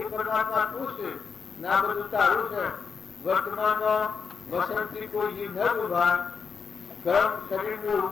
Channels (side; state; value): right; quieter; 5.8 dB